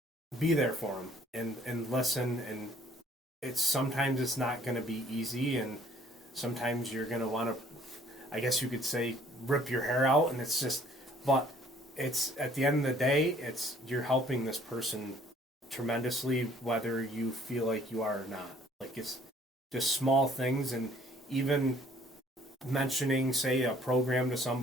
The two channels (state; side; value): normal; both; correlation 0.58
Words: be there for them and listen. And sometimes it's not going to be easy, and sometimes you're going to want to, I guess you could say, rip your hair out, and it's just, but it's at the end of the day, it's you're helping this person tremendously, whether you feel like you are or not. Like it's just small things, and even mentioning, say, a program to